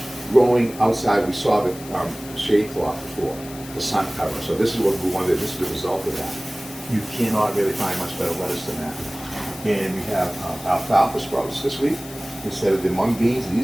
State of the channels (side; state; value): left; noise; hiss, 16 dB below the sound